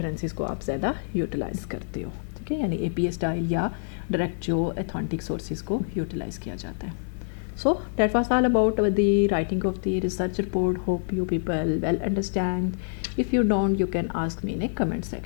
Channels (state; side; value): silent; right; digital silence